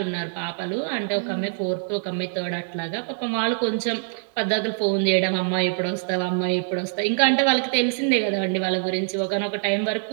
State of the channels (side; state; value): left; silent; digital silence